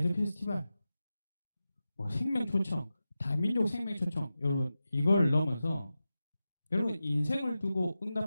페스티벌 뭐 생명초청 다민족 생명초청 여러분 이걸 넘어서 여러분 인생을 두고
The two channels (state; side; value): inverted; both; correlation -0.93